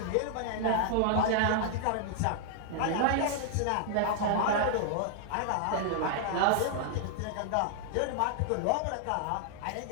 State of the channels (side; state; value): both; different; correlation -0.01